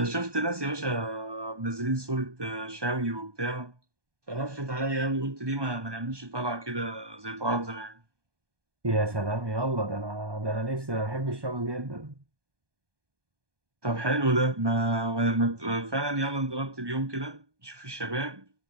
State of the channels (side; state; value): left; late; 1.2 ms